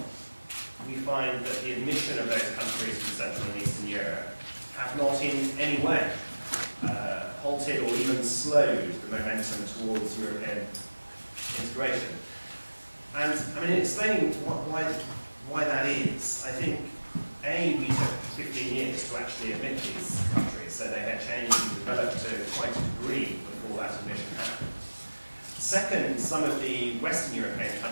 we find that the admission of those countries from Central and Eastern Europe have not in any way halted or even slowed the momentum towards European integration. And I mean, in explaining why that is, I think, A, we took 15 years to actually admit these countries, so they had changed and developed to quite a degree before that admission happened. Second, some of the Western European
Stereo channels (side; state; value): both; inverted; correlation -1.00